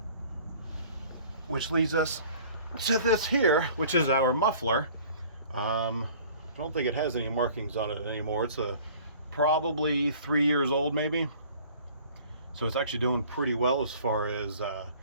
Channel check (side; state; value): both; inverted; correlation -0.50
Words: which leads us to this here, which is our muffler. I don't think it has any markings on it anymore. It's probably 3 years old, maybe. So it's actually doing pretty well as far as the